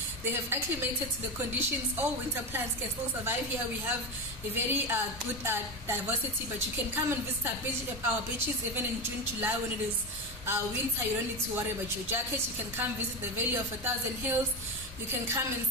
They have acclimated to the conditions. All winter plants can still survive here. We have a very good diversity, but you can come and visit our beaches even in June, July when it is winter. You don't need to worry about your jackets. You can come visit the Valley of a Thousand Hills. You can come and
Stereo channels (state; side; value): normal; both; correlation 0.17